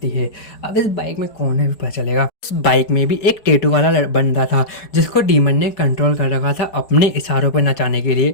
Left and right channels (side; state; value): right; late; 4.7 ms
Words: है। अब इस बाइक में कौन है भी पता चलेगा। उस बाइक में भी एक टेटू वाला बंदा था जिसको डीमन ने कंट्रोल कर रखा था अपने इशारों पर नचाने के